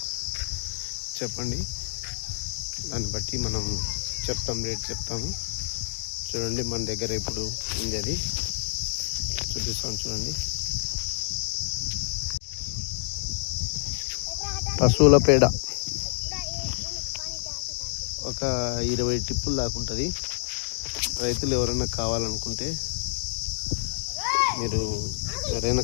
చెప్పండి, దాన్ని బట్టి మనం చెప్తాం, రేట్ చెప్తాము. చూడండి, మన దగ్గర ఇప్పుడు ఉంది, అది చూపిస్తాను. చూడండి, పశువుల పేడ ఒక 20 టిప్పులు దాకా ఉంటుంది. రైతులు ఎవరైనా కావాలనుకుంటే, మీరు ఎవరైనా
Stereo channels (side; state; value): right; silent; digital silence